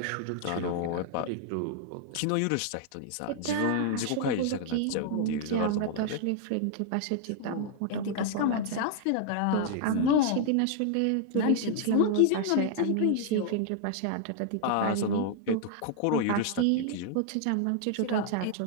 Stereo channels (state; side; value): different; both; correlation 0.00